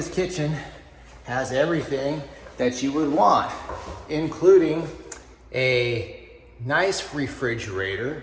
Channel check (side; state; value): both; identical; correlation 1.00